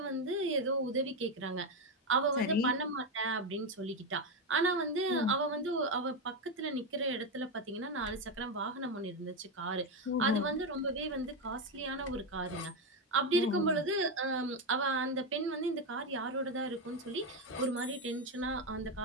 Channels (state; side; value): normal; both; correlation 0.09